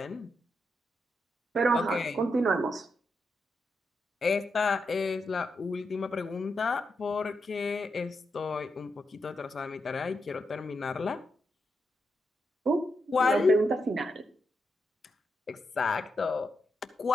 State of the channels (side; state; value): both; normal; correlation 0.84